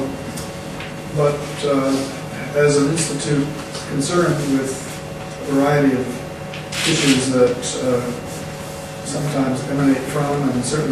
But as an institute concerned with a variety of issues that sometimes emanate from and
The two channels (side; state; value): both; identical; correlation 1.00